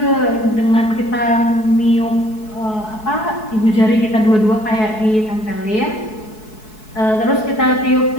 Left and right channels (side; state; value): right; late; 4.7 ms